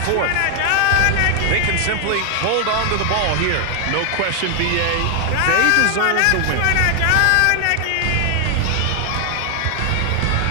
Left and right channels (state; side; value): different; both; correlation 0.00